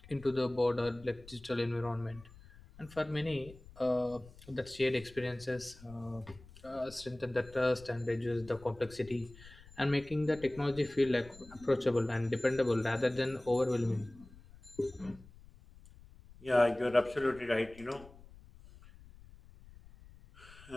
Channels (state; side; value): noise; left; rumble, 21 dB below the sound